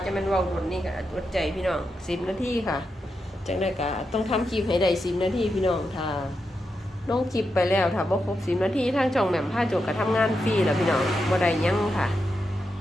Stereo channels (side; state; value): both; normal; correlation 0.86